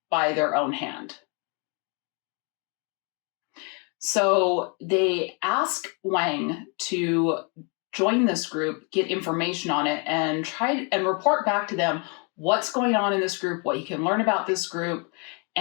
by their own hand. So they ask Wang to join this group, get information on it, and try and report back to them what's going on in this group, what you can learn about this group,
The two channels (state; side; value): quieter; right; 35.4 dB